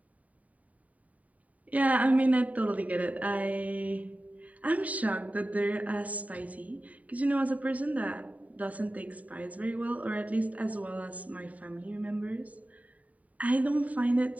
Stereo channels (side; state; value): left; late; 0.070 ms